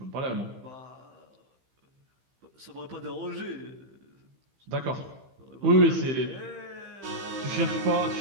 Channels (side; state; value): left; late; 15 ms